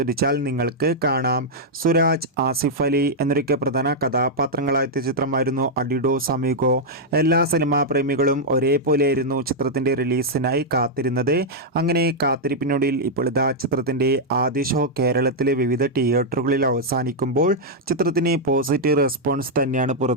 നിങ്ങൾക്ക് കാണാം. സുരാജ്, ആസിഫ് അലി എന്നൊക്കെ പ്രധാന കഥാപാത്രങ്ങളായ ചിത്രമായിരുന്നു അഡിഡോസ് അമിഗോ. എല്ലാ സിനിമാ പ്രേമികളും ഒരേപോലെയായിരുന്നു ചിത്രത്തിൻ്റെ റിലീസിനായി കാത്തിരുന്നത്. അങ്ങനെ കാത്തിരിപ്പിനൊടുവിൽ ഇപ്പോൾ ഇതാ ചിത്രത്തിൻ്റെ ആദ്യ ഷോ കേരളത്തിലെ വിവിധ തിയേറ്ററുകളിൽ അവസാനിക്കുമ്പോൾ ചിത്രത്തിന് പോസിറ്റീവ് റെസ്പോൺസ് തന്നെയാണ്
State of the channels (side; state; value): both; normal; correlation -0.04